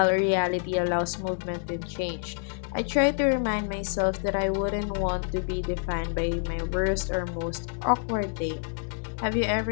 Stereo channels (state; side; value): silent; right; digital silence